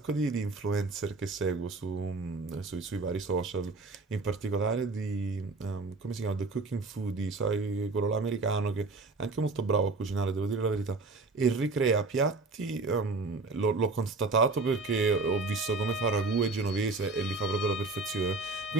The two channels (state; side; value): quieter; left; 3.7 dB